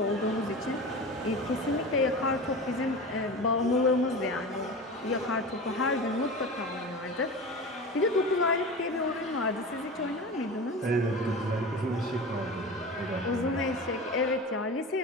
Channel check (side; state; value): both; normal; correlation 0.30